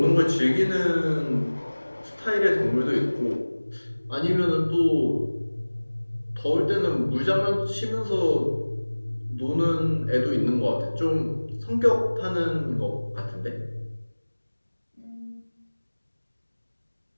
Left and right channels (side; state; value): both; inverted; correlation -1.00